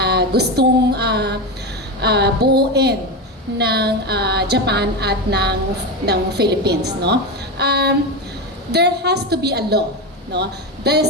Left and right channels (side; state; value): both; normal; correlation 0.17